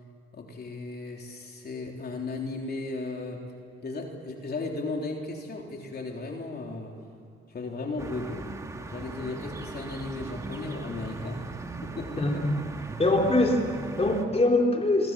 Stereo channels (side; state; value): both; normal; correlation 0.61